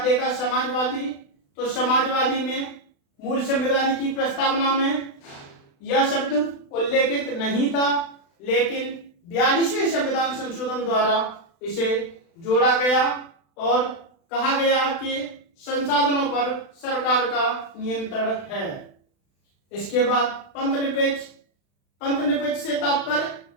देखा समाजवादी, तो समाजवादी में मूल संविधान की प्रस्तावना में यह शब्द उल्लेखित नहीं था, लेकिन 42वें संविधान संशोधन द्वारा इसे जोड़ा गया और कहा गया कि संसाधनों पर सरकार का नियंत्रण है। इसके बाद पंथ निरपेक्ष से तात्पर्य,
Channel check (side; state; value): right; late; 36 ms